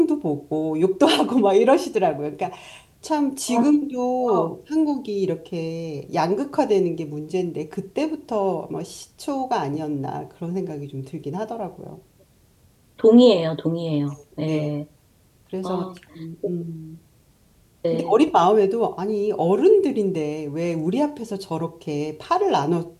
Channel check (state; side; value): identical; both; correlation 1.00